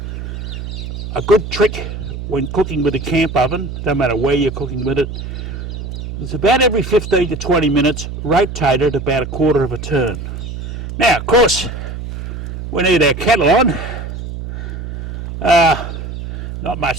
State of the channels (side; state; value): right; noise; hum, 7 dB below the sound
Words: A good trick when cooking with a camp oven, no matter where you're cooking with it, it's about every 15 to 20 minutes, rotate it about a quarter of a turn. Now, of course, we need our kettle on. Not